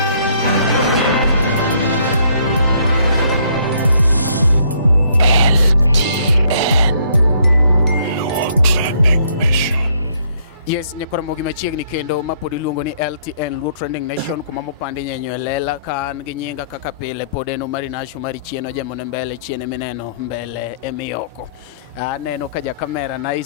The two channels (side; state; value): both; inverted; correlation -0.66